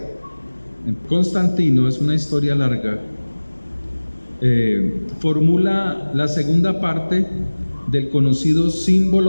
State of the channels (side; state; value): both; inverted; correlation -1.00